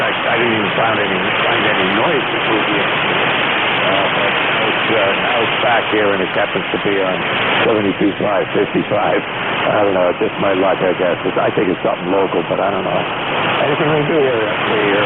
didn't even find any noise before the but now it's back here, and it happens to be on 72.5, 55. I don't know. It's just my luck, I guess. I think it's something local, but I don't know. Anything we can do here,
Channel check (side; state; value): right; noise; rumble, 24 dB below the sound